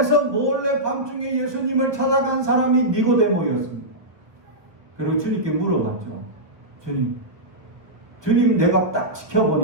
몰래 밤중에 예수님을 찾아간 사람이 니고데모였습니다. 그리고 주님께 물어봤죠. 주님 내가 딱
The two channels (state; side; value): late; left; 1.1 ms